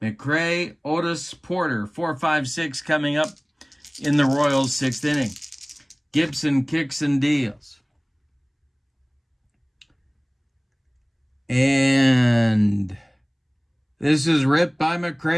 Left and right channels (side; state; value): both; identical; correlation 1.00